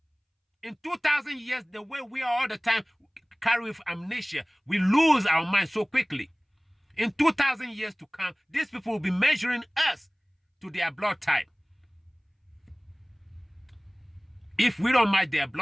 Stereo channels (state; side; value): identical; both; correlation 1.00